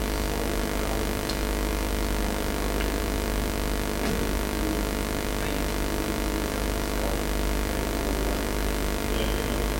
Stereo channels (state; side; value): identical; both; correlation 1.00